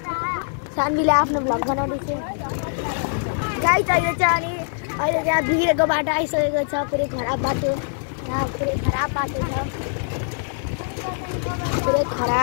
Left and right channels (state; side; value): silent; right; digital silence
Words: सानवीले आफ्नो भ्लग बनाउँदैछ गाइस। अहिले चाहिँ अहिले त्यहाँ बिग्रेको बाटो आइसकेको छ, पुरै खराब बाटो, यहाँ पुरै खराब बाटो छ, पुरै